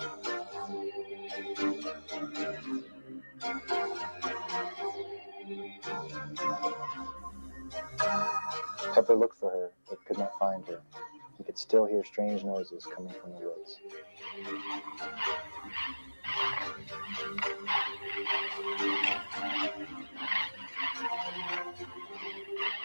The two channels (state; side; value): inverted; both; correlation -1.00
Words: Pepper looked for her, but could not find her. He could still hear strange noises coming from the woods.